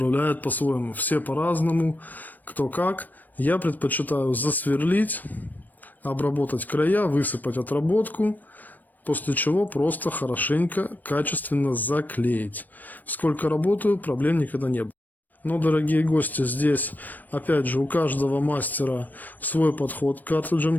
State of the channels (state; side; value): late; right; 0.086 ms